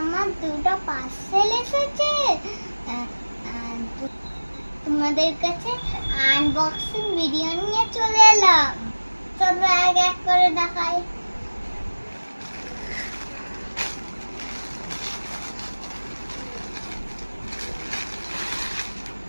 দুটো পার্সেল এসেছে। তোমাদের কাছে আনবক্সিং ভিডিও নিয়ে চলে এলাম। চলো এক এক করে দেখাই।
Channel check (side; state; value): both; inverted; correlation -1.00